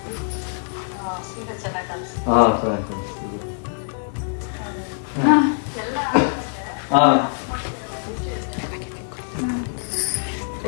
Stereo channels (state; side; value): silent; right; 63 dB below the other